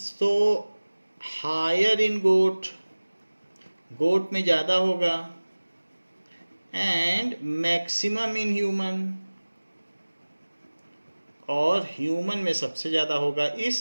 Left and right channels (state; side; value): inverted; both; correlation -1.00